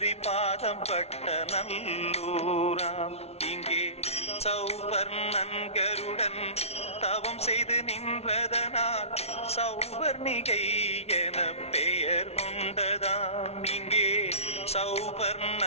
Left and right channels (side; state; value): right; late; 0.31 ms